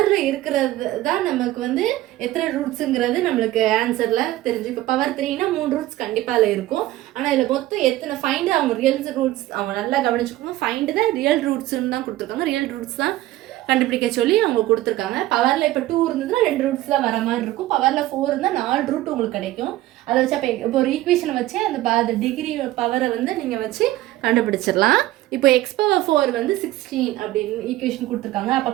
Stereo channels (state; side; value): quieter; left; 16.0 dB